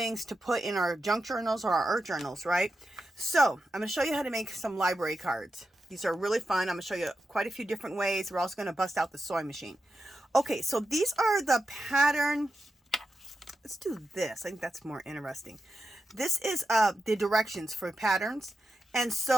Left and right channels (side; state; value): both; normal; correlation 0.89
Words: to put in our junk journals or our art journals, right? So I'm going to show you how to make some library cards. These are really fun. I'm going to show you quite a few different ways. We're also going to bust out the sewing machine. Okay, so these are the pattern. Let's do this. I think that's more interesting. This is the directions for patterns. And